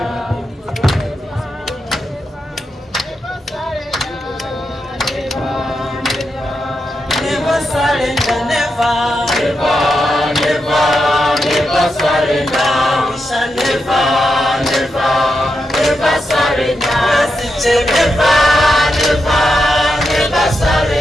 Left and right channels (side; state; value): both; normal; correlation 0.86